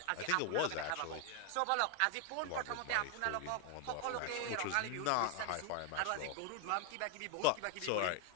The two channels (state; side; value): different; both; correlation 0.00